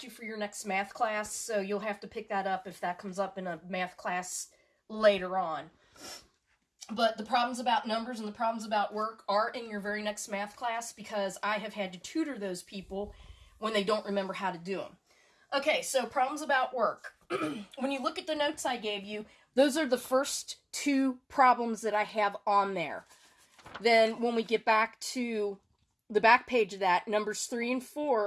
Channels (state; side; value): identical; both; correlation 1.00